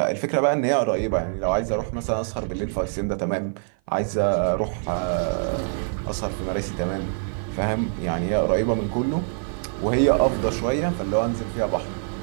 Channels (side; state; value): left; silent; 55 dB below the other